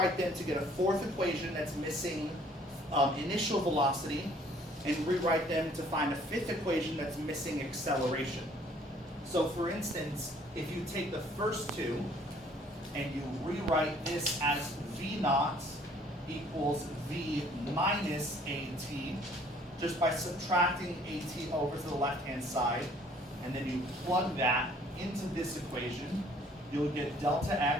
them to get a 4th equation that's missing initial velocity, and rewrite them to find a 5th equation that's missing acceleration. So for instance, if you take the first 2 and you rewrite this as V naught equals V minus AT, just by subtracting AT over to the left-hand side, and then you plug that into this equation, you'll get delta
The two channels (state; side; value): normal; both; correlation 0.58